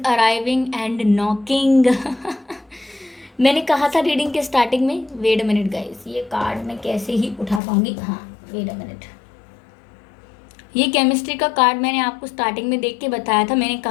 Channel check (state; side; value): drops out; right; at 7.6 s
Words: arriving and knocking मैंने कहा था रीडिंग के स्टार्टिंग में, वेट अ मिनट गाइस, ये कार्ड मैं कैसे ही उठा पाऊंगी, हाँ वेट अ मिनट। ये केमिस्ट्री का कार्ड मैंने आपको स्टार्टिंग में देख के बताया था। मैंने